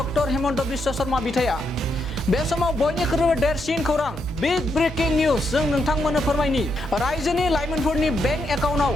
हिमन्त बिश्व शर्मा बिथाङा बे समाव बयनिख्रुइबो देरसिन खौरां बिग ब्रेकिं निउज जों नोंथांमोननो फोरमायनि रायजोनि लाइमोनफोरनि बेंक एकाउन्टआव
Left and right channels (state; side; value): normal; both; correlation 0.80